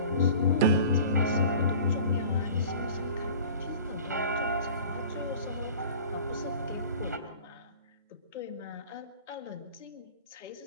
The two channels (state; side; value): inverted; both; correlation -0.42